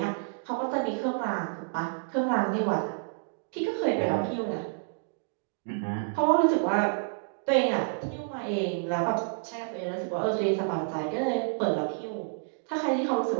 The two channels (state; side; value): silent; left; digital silence